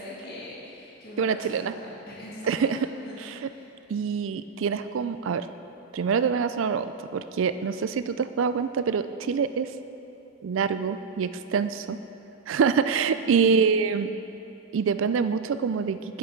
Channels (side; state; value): left; quieter; 5.6 dB